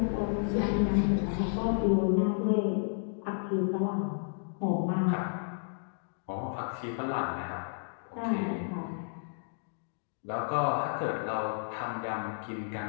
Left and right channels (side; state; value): right; silent; digital silence